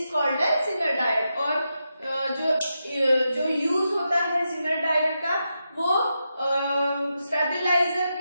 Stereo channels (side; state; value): both; inverted; correlation -0.87